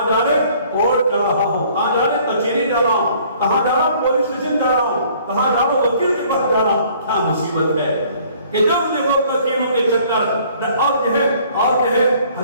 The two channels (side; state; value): both; inverted; correlation -0.57